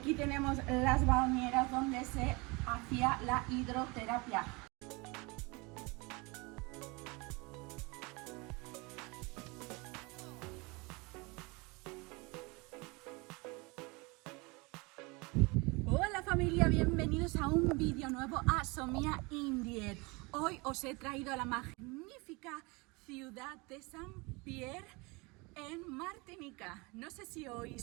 tenemos las bañeras donde se hacía la hidroterapia. Hola familia, bienvenidos a un vídeo nuevo a Somia Indier. Hoy os he traído a la magnífica ciudad de Saint-Pierre en Martinica. No sé si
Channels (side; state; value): left; quieter; 26.7 dB